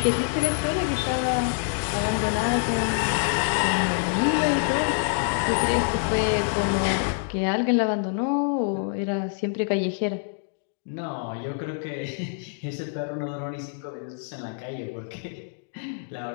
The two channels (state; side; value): silent; right; digital silence